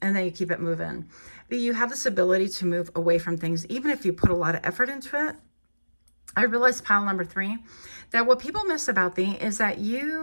And then you keep it moving. But you have this ability to move away from things, even if you put a lot of effort into it. I realized, pile number 3, that what people miss about thee is that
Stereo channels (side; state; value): both; inverted; correlation -1.00